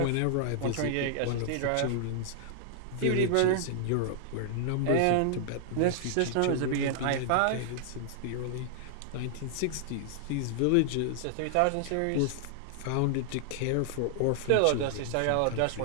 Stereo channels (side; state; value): both; different; correlation -0.01